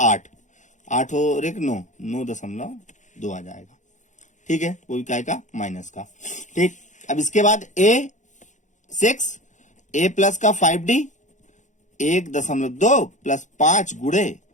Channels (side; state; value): right; late; 0.35 ms